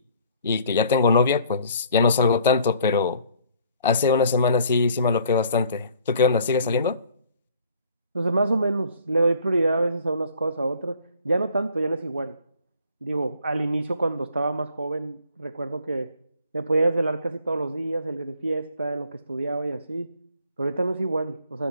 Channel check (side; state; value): both; inverted; correlation -0.58